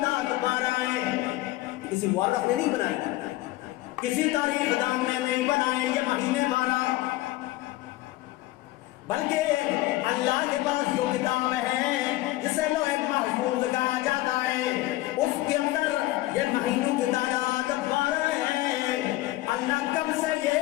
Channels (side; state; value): right; quieter; 17.6 dB